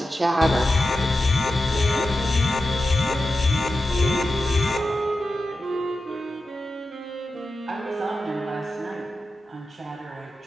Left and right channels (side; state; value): both; normal; correlation 0.91